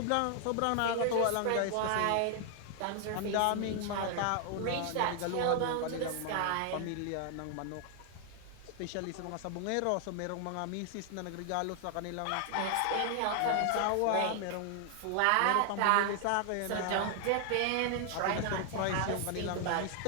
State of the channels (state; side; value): different; both; correlation 0.00